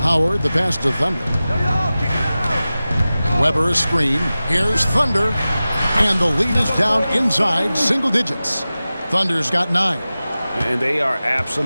Howard, the pass to Thunder. Weber a screen. Here's Thunder. And the lead is down inside single digits. Thunder's got 9. And they are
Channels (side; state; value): both; inverted; correlation -0.96